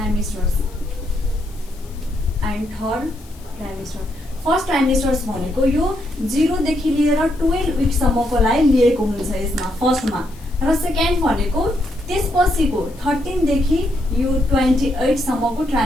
and third trimester. First trimesters भनेको यो 0 देखि लिएर 12 विकसम्मकोलाई लिएको हुन्छ यसमा फर्स्टमा, र सेकेन्ड भनेको त्यसपछिको 13 देखि यो 28 सम्मको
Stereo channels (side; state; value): left; noise; hiss, 25 dB below the sound